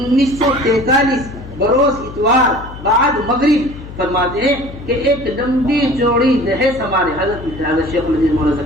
بروز اتوار بعد مغرب فرماتے ہیں کہ ایک لمبی چوڑی بحث ہمارے حضرت شیخ الحدیث مولانا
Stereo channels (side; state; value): left; noise; hum, 14 dB below the sound